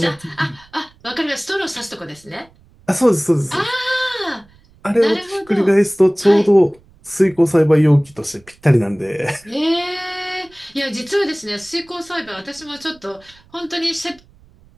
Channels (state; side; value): noise; right; rumble, 29 dB below the sound